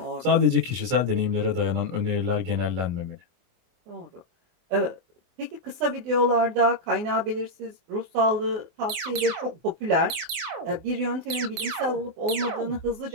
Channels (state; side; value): late; left; 24 ms